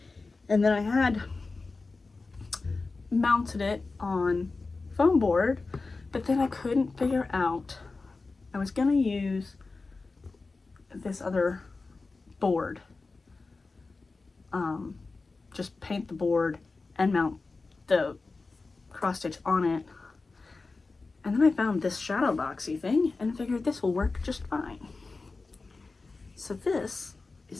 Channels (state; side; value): quieter; right; 3.8 dB